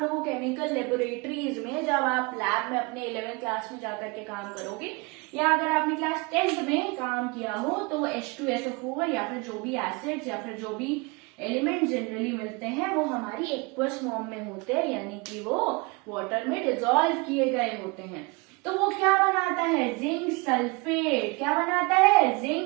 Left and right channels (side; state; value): left; quieter; 28.2 dB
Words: लोगों केमिकल लेबोरेटरीज में, जब आप लैब में अपने 11th क्लास में जाकर के काम करोगे, या अगर आपने क्लास 10th में काम किया हो, तो H2SO4 या फिर जो भी एसिड्स या फिर जो भी एलिमेंट जनरली मिलते हैं वो हमारी एक्वस फॉर्म में होते हैं, यानी कि वो वाटर में डिसॉल्व किए गए होते हैं। तो वो क्या बनाता है, जिंक सल्फेट। क्या बनाता है,